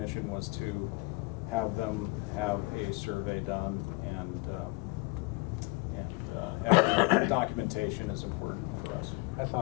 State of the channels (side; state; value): right; quieter; 26.0 dB